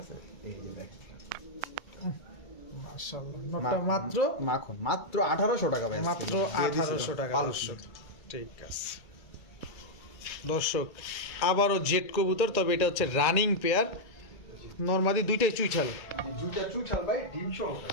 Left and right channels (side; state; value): right; late; 2.3 ms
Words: আছে? এই যে দেখেন মাশাআল্লাহ, নটটা মাত্র মাখন, মাত্র 1800 টাকা ভাই, মাত্র 1800 টাকা দর্শক। ঠিক আছে দর্শক, আবারও জেট কবুতর, তবে এটা হচ্ছে রানিং পেয়ার, নরমাদি দুইটাই চুইঠাল, দুইটা চুইঠাল ভাই, ডিম সহ।